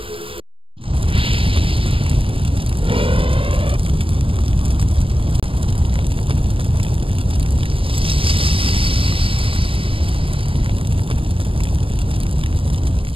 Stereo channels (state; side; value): late; left; 0.26 ms